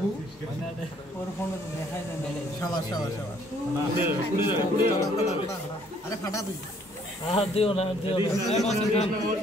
ওর ফোনে তো দেখাই যায় না শাবাশ শাবাশ শাবাশ আরে ফাটা তুই আর দিও না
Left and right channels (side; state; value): both; normal; correlation 0.63